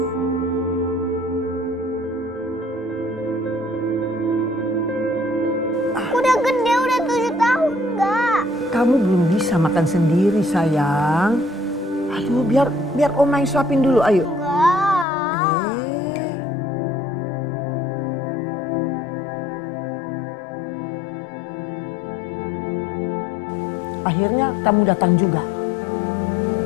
Aku udah gede, udah 7 tahun, enggak. Kamu belum bisa makan sendiri, sayang. Aduh, biar Oma yang suapin dulu, ayo. Akhirnya kamu datang juga.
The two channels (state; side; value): drops out; right; at 15.1 s